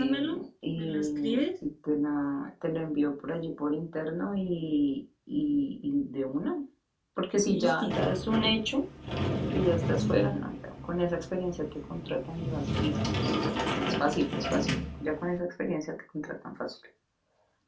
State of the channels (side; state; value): both; identical; correlation 1.00